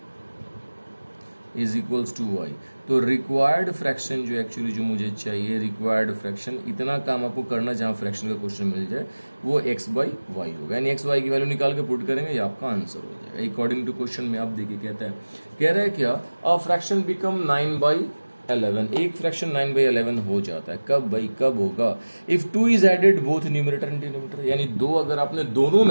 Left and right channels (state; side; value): inverted; both; correlation -1.00